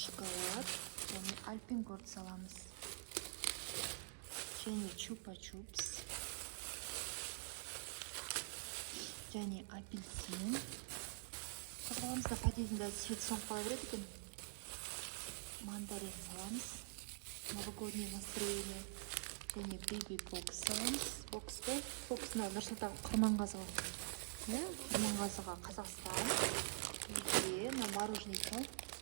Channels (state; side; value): silent; left; digital silence